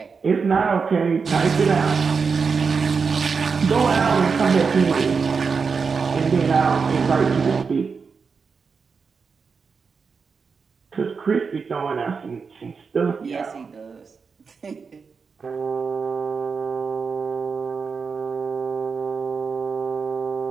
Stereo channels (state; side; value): quieter; left; 5.3 dB